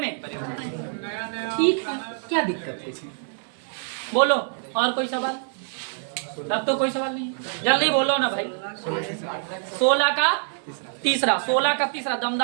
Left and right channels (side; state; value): left; silent; 57 dB below the other